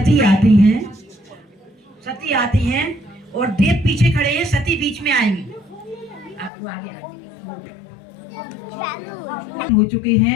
आती हैं और देव पीछे खड़े हैं, सती बीच में आएंगी। आपको आगे हो चुके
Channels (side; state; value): right; drops out; at 6.5 s